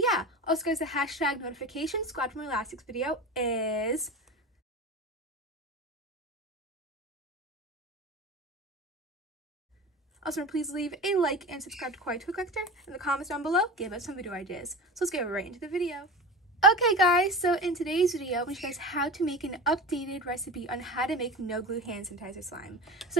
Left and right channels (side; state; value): both; normal; correlation 0.30